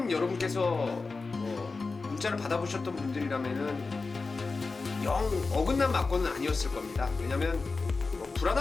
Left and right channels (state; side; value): quieter; right; 4.0 dB